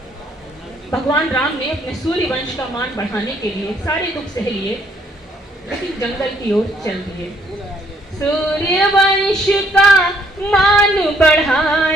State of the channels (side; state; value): both; normal; correlation 0.67